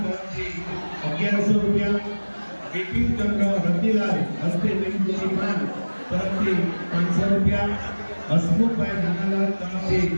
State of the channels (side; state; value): both; inverted; correlation -1.00